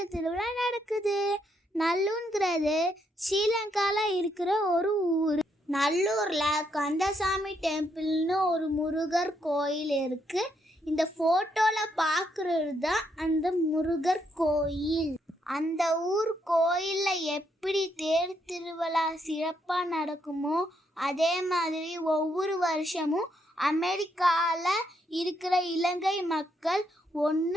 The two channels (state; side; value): normal; both; correlation 0.76